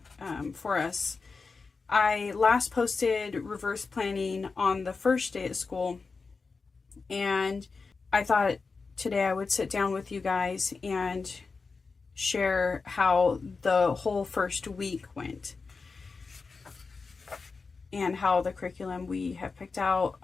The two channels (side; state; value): right; quieter; 4.5 dB